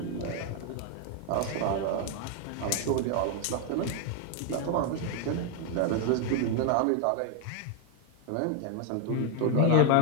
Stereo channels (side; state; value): both; different; correlation 0.01